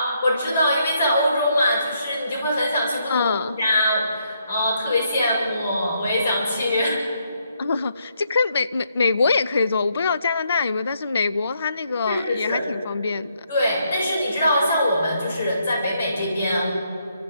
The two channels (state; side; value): inverted; both; correlation -0.75